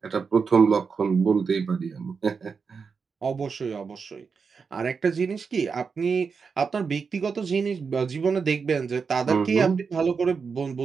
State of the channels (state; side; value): quieter; left; 5.5 dB